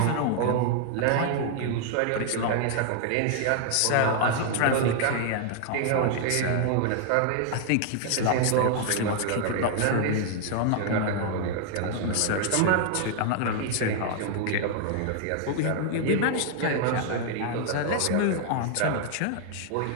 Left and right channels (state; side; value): different; both; correlation 0.00